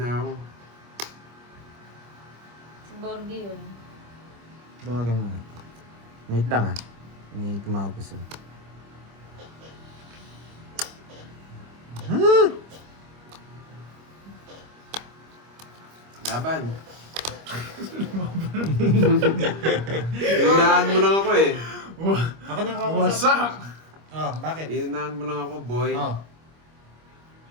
ako. Si Borgie yun. Tawagan mo. Wait lang ah. May tumawag ko sa'yo. Laban. Inunahan mo lang ako eh. Ako nang kausap. Wasak! Oh, bakit? Inunahan mo lang ako, boy. Oh.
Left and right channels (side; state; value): left; late; 25 ms